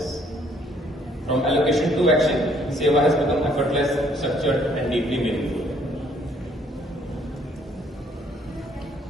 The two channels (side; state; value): both; normal; correlation 0.64